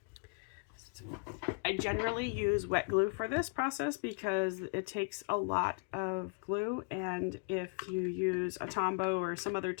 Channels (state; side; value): quieter; right; 34.2 dB